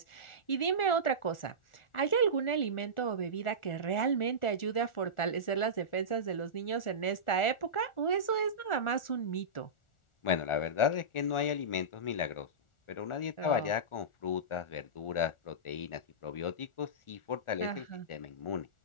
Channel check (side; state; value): right; late; 1.4 ms